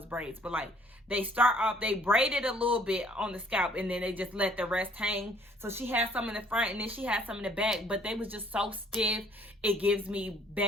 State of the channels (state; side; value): normal; both; correlation 0.59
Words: braids, but like they start off, they braided a little bit on the scalp and then they just let the rest hang. So she had some in the front and then she had some in the back, but they was just so stiff. It gives me